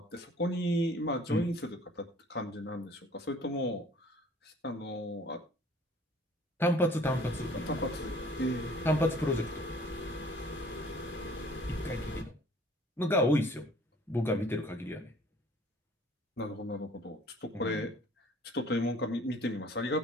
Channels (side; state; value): both; normal; correlation 0.54